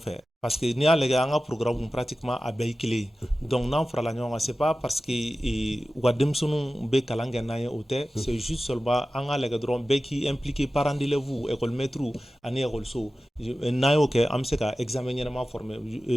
fait. Parce que ni a les gars, un programme pratiquement à Baïkile. Donc, non, Frala Nyon, c'est pas parce que Wademsonu Be Kalanganaye Ote, c'est juste seulement un les gars, Beki impliqué parents d'élèves, école maître, ani école so. Nayo ke am se ka examen ɲɛnama formé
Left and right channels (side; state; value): both; normal; correlation 0.95